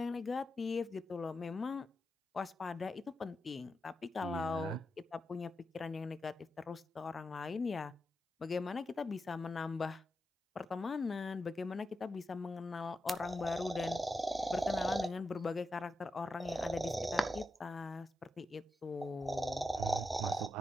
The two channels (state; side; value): normal; both; correlation 0.88